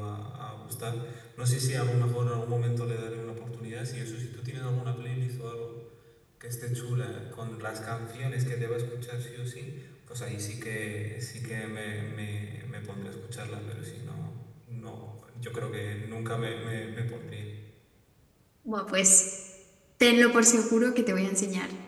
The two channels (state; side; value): identical; both; correlation 1.00